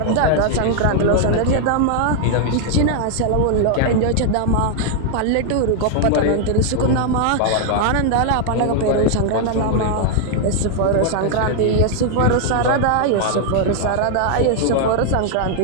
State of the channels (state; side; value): different; both; correlation 0.00